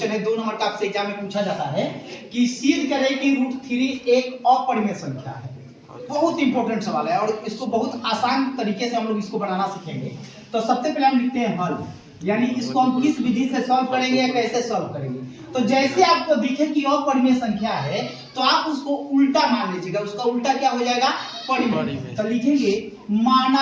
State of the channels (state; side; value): identical; both; correlation 1.00